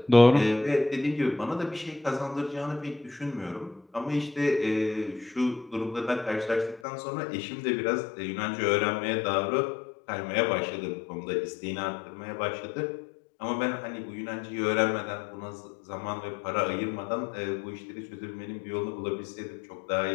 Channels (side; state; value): right; drops out; at 6.8 s